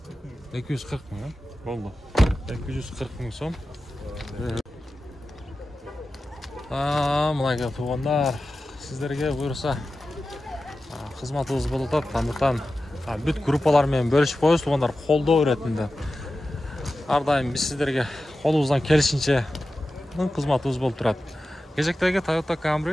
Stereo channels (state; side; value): normal; both; correlation 0.94